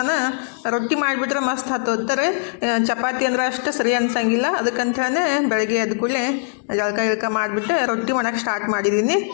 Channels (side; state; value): right; silent; digital silence